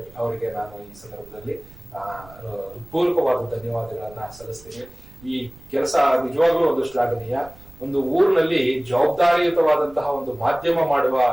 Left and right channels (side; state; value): right; noise; rumble, 22 dB below the sound